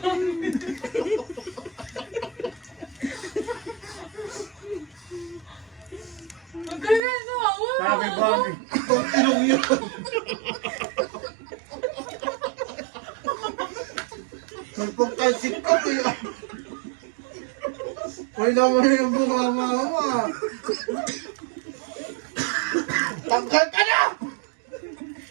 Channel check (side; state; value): left; drops out; at 7.0 s